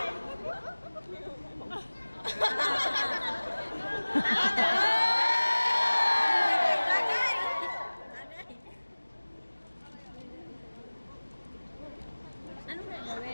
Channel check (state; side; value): inverted; both; correlation -1.00